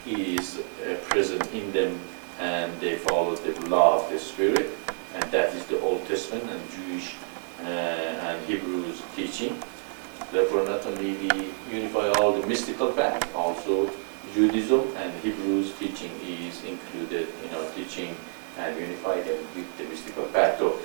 is present in them and they follow the law of the spirit, and that is the Old Testament and Jewish and Hebrews teaching. Therefore, not only we unify all the mystical path, also Judaism and Hebrews teaching is included in our teaching and unify them with the mystical path. So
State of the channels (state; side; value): silent; left; 59 dB below the other